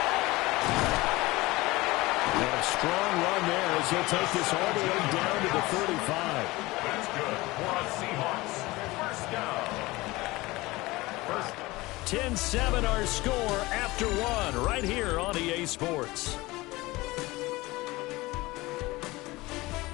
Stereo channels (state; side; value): quieter; right; 20.7 dB